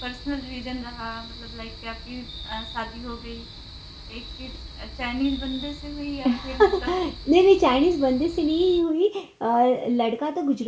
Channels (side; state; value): both; identical; correlation 1.00